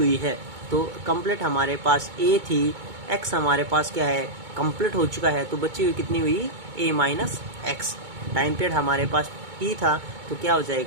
है। तो कंप्लीट हमारे पास ए थी, एक्स हमारे पास क्या है, कंप्लीट हो चुका है, तो बची हुई कितनी हुई, a minus x. Time period हमारे पास टी था, तो क्या हो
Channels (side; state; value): left; late; 2.2 ms